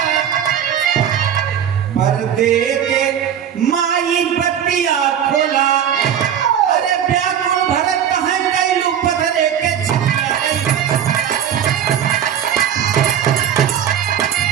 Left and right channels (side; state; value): left; quieter; 9.1 dB